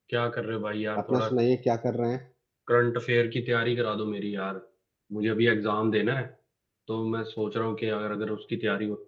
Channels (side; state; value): both; identical; correlation 1.00